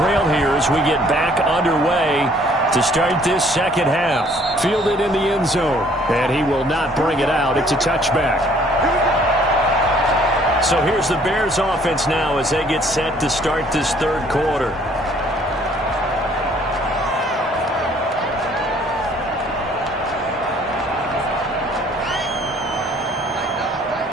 here as we get back underway to start this second half. Fielded in the end zone, and he will not bring it out. It's a touchback. So here's the Bears offense now as they get set to start this third quarter.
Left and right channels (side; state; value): both; normal; correlation 0.60